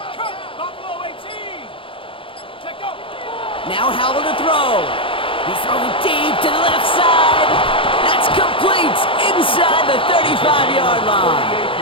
cut Buffalo 18. Take go. Now Howell to throw. He's throwing deep to the left side. That's complete inside the 35-yard line.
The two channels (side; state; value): right; late; 0.25 ms